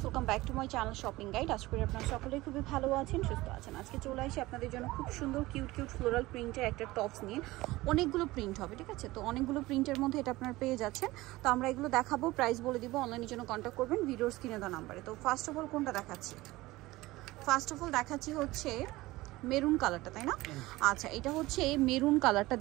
welcome back to my channel shopping guide. আশা করি আপনারা সকলেই খুবই ভালো আছেন, সুস্থ আছেন। আজকে চলে আসি আপনাদের জন্য খুব সুন্দর কিউট ফ্লোরাল প্রিন্টের একটা টপস নিয়ে। অনেকগুলো প্রিন্ট হবে, ঠিক আছে? তো অনেকগুলো প্রিন্টের মধ্যে এটা আপনারা পেয়ে যাচ্ছেন। তো আমরা এগুলো দেখাবো, প্রাইস বলে দিব, অনলাইনের জন্য কন্ট্যাক্ট করবেন ভিডিওর স্ক্রিনে দেওয়া নাম্বারে। তো ফার্স্ট অফ অল কোনটা দেখাচ্ছি? ফার্স্ট অফ অল দেখাচ্ছি হচ্ছে মেরুন কালারটা, তাই না? আচ্ছা, এটা হচ্ছে মেরুন কালারটা।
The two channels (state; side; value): quieter; left; 19.1 dB